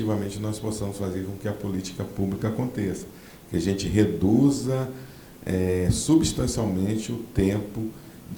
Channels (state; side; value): identical; both; correlation 1.00